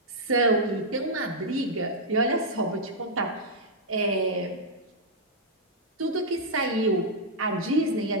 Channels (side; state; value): both; normal; correlation -0.06